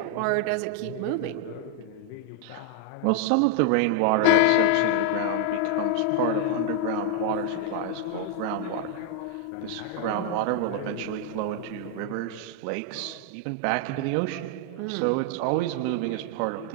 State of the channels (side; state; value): both; different; correlation 0.01